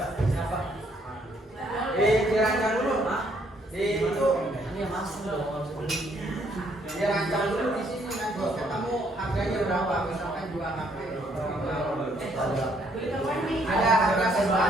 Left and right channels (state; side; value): normal; both; correlation 0.68